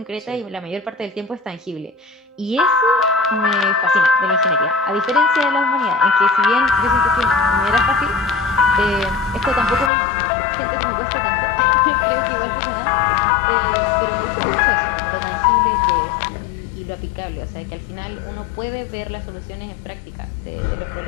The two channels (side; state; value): right; drops out; at 9.9 s